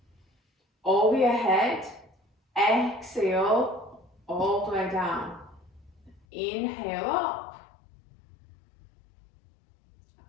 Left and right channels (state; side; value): drops out; right; at 6.2 s